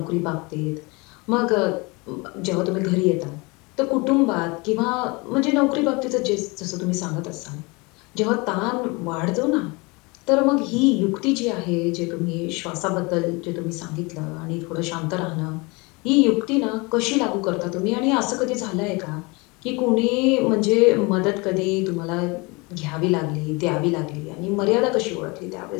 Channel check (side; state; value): right; quieter; 26.8 dB